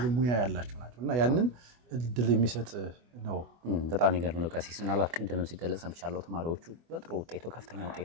ሙያ ያላቸው ናቸውና ያንን እድል የሚሰጥ ነው በጣም ይገርም ነው ቀሲስ ምናልባት ቅድም ሲገለጽ ሰምቻለሁ ተማሪዎቹ በጥሩ ውጤት ከፍተኛ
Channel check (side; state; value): left; late; 24 ms